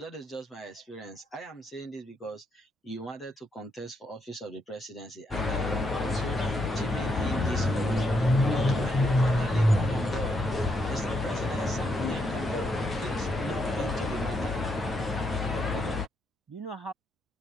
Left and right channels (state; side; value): normal; both; correlation 0.77